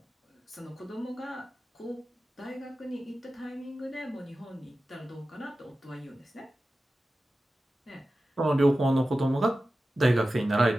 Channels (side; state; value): both; normal; correlation 0.94